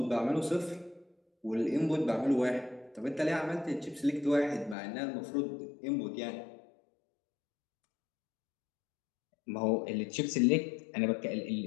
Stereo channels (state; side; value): drops out; right; at 4.8 s